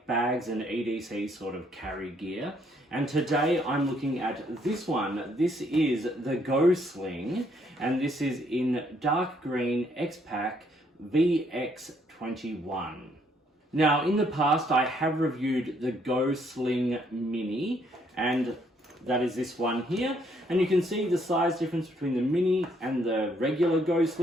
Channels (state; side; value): normal; both; correlation 0.69